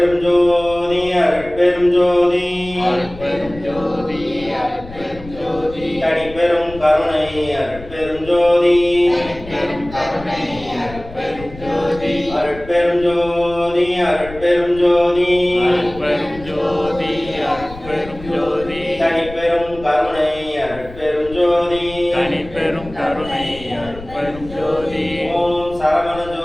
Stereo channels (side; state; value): left; noise; rumble, 16 dB below the sound